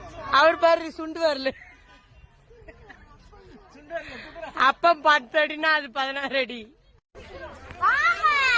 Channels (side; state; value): both; identical; correlation 1.00